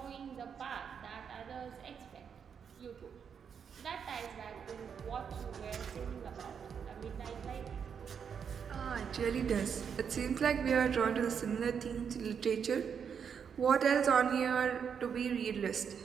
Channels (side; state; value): left; quieter; 7.1 dB